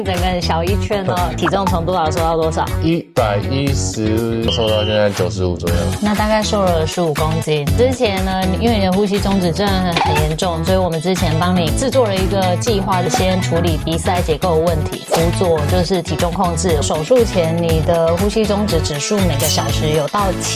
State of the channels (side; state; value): both; identical; correlation 1.00